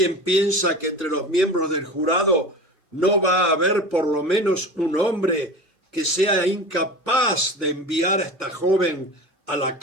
piensa que entre los miembros del jurado no va a haber por lo menos un hombre que sea incapaz de enviar a esta joven a la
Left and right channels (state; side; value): normal; both; correlation 0.32